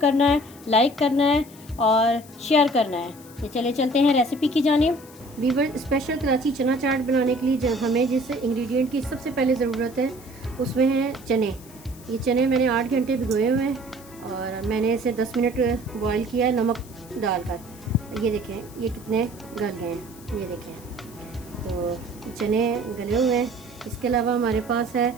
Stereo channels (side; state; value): left; noise; hiss, 21 dB below the sound